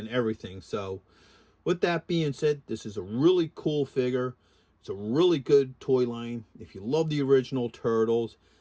everything. So with that being said, this is a really cool figure. It's a really good toy line. If you love the original Turtles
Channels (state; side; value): identical; both; correlation 1.00